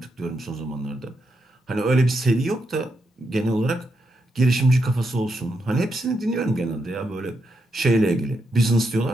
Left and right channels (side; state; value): both; normal; correlation 0.82